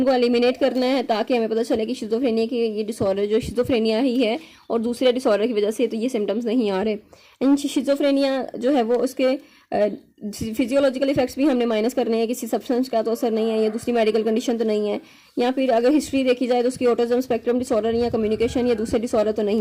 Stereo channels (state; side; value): identical; both; correlation 1.00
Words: एलिमिनेट करना है, ताकि हमें पता चले कि शिज़ोफ्रेनिया की ये डिसऑर्डर जो शिज़ोफ्रेनिया ही है और दूसरे डिसऑर्डर की वजह से तो ये सिम्टम्स नहीं आ रहे। एंड शिज़ोफ्रेनिया जो है वो उसके फिजियोलॉजिकल इफेक्ट्स भी हमने माइनस करने हैं, किसी सब्सटेंस का तो असर नहीं है या दूसरी मेडिकल कंडीशन तो नहीं है, या फिर अगर हिस्ट्री देखी जाए तो उसकी ऑटिज्म स्पेक्ट्रम डिसऑर्डर या कम्युनिकेशन या दूसरे डिसऑर्डर तो